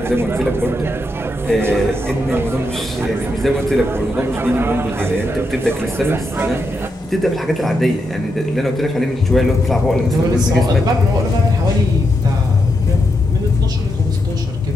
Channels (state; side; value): normal; both; correlation 0.83